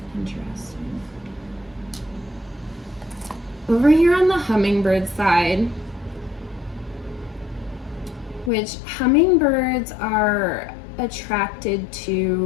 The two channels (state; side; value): drops out; right; at 8.5 s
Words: Interesting. Over here on the hummingbird side, which hummingbirds are attracted